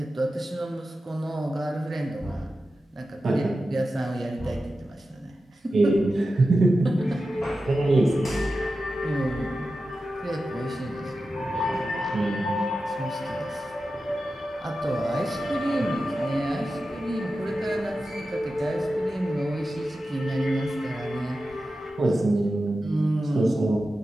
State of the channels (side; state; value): both; normal; correlation 0.92